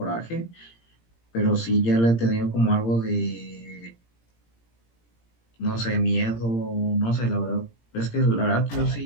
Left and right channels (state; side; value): late; right; 17 ms